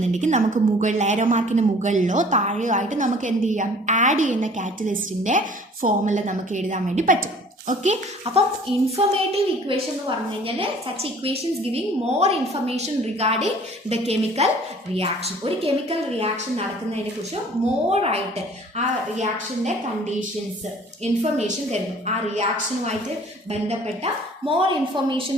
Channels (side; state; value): both; normal; correlation 0.51